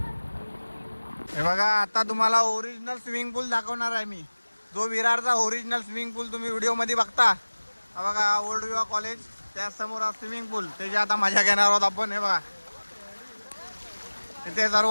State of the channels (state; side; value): inverted; both; correlation -1.00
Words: हे बघा आता तुम्हाला ओरिजिनल स्विमिंग पूल दाखवणार आहे मी. जो विरारचा ओरिजिनल स्विमिंग पूल तुम्ही व्हिडिओ मध्ये बघता. हा बघा ओल्ड विवा कॉलेज, त्या समोर स्विमिंग पूल. त्याची आता मजा घेणार आहोत आपण. हे बघा इथे सर्व